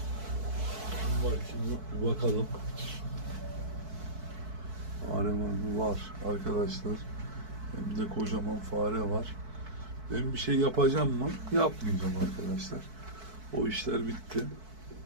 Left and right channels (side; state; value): left; late; 4.6 ms